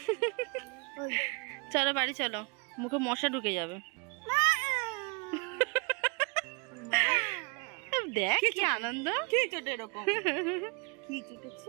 চলো বাড়ি চলো, মুখে মশা ঢুকে যাবে। দেখ কি আনন্দ। কি চোট এরকম? কি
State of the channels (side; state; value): left; quieter; 32.9 dB